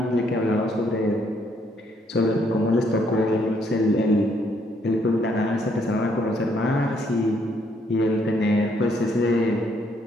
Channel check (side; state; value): both; normal; correlation 0.70